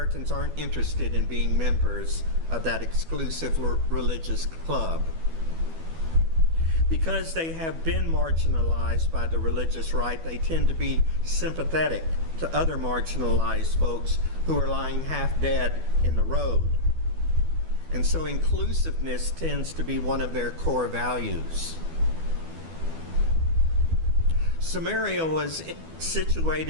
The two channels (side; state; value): left; late; 12 ms